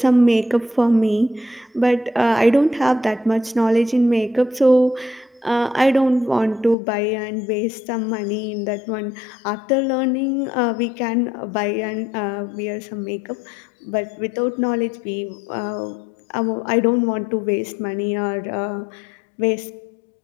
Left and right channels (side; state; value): right; drops out; at 6.8 s